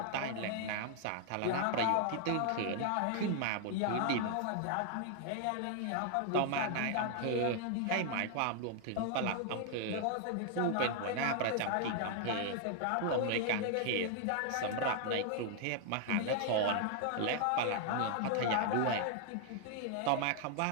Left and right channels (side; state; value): both; different; correlation 0.00